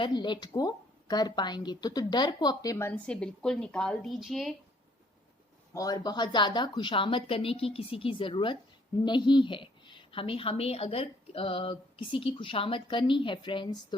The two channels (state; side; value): normal; both; correlation 0.64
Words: लेट गो कर पाएंगे। तो डर को अपने मन से बिल्कुल निकाल दीजिए, और बहुत ज़्यादा खुशामद करने की किसी की ज़रूरत नहीं है। हमें अगर किसी की खुशामद करनी है फ्रेंड्स,